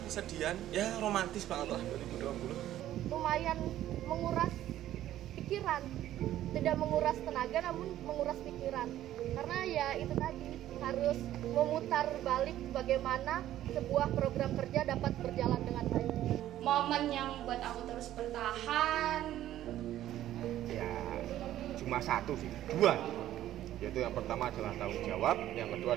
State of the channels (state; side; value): quieter; left; 12.9 dB